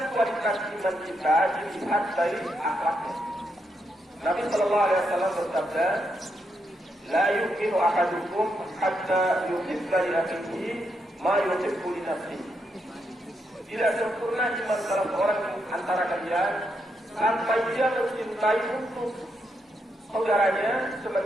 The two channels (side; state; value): both; normal; correlation 0.81